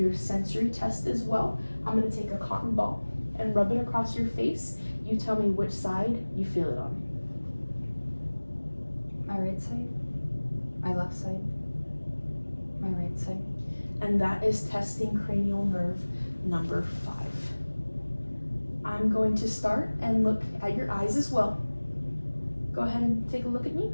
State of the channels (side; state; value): both; inverted; correlation -1.00